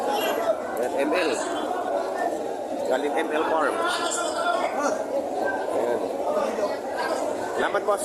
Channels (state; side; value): identical; both; correlation 1.00